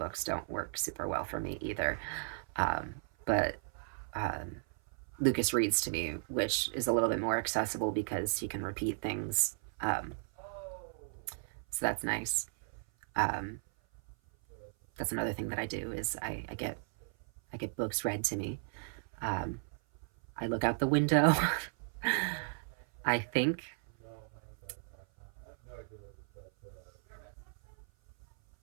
don't work super well for me either. Um, but um, Lucas reads to me, which is a little bit more accessible because he can repeat things. So that's nice. Um, that's another thing that I do is I get books read to me. Um, I look out the window. I think.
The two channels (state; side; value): silent; left; 54 dB below the other